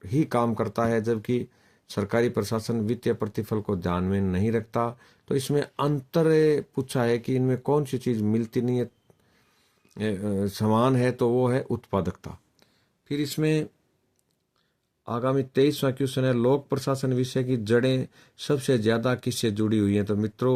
ही काम करता है, जबकि सरकारी प्रशासन वित्तीय प्रतिफल को ध्यान में नहीं रखता। तो इसमें अंतर पूछा है कि इनमें कौन सी चीज मिलती नहीं है, समान है, तो वो है उत्पादकता। फिर इसमें आगामी 23वां क्वेश्चन है, लोक प्रशासन विषय की जड़ें सबसे ज्यादा किससे जुड़ी हुई हैं। तो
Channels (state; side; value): identical; both; correlation 1.00